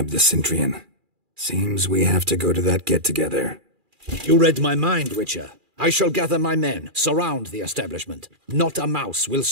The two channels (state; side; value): late; left; 2.4 ms